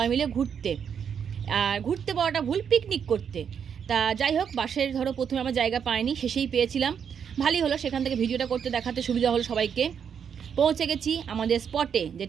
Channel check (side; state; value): left; quieter; 7.5 dB